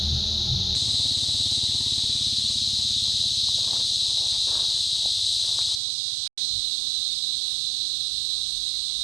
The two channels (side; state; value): left; drops out; at 5.8 s